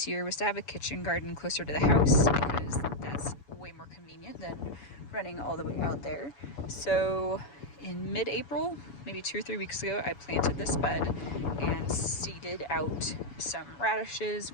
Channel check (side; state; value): right; late; 7.1 ms